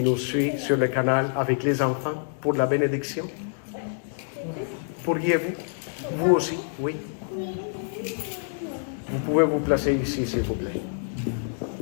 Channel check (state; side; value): silent; right; digital silence